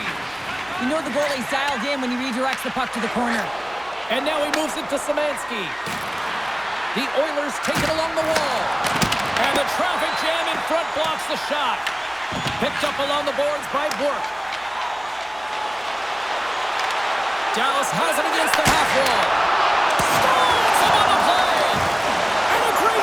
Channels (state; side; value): noise; right; hum, 30 dB below the sound